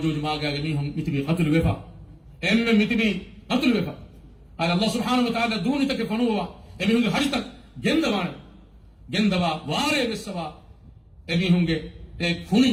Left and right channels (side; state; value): both; identical; correlation 1.00